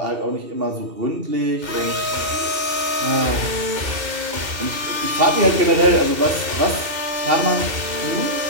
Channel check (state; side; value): late; left; 2.7 ms